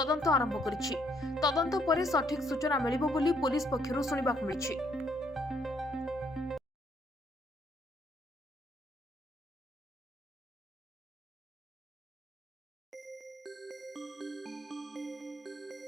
आरंभ करिछि। तदंत पर सठिक सूचना मिलिबो बोली पुलिस पक्षरु सुनिबाकू मिलिछि।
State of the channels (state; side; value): normal; both; correlation 0.69